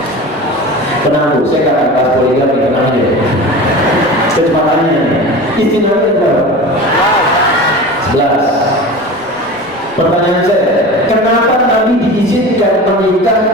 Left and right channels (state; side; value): noise; right; rumble, 30 dB below the sound